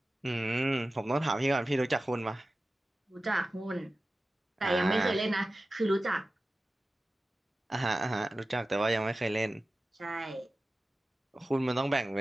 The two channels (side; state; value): both; normal; correlation 0.95